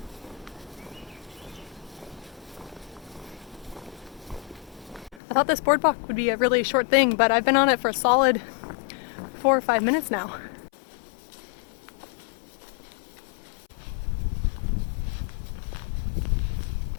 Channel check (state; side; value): drops out; right; at 5.2 s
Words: I thought this boardwalk would be a really short thing, but I've been on it for a solid 4 or 5 minutes now.